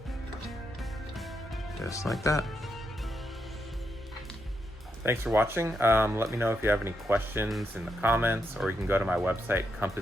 Just like that. Thanks for watching. Let me know if you have any questions in the comments, or you can go to my website,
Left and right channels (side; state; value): both; normal; correlation 0.82